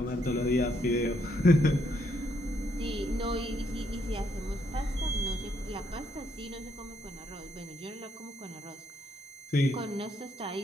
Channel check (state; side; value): normal; both; correlation 0.74